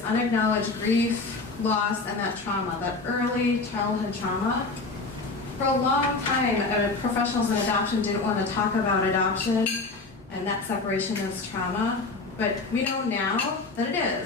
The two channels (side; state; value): right; quieter; 3.7 dB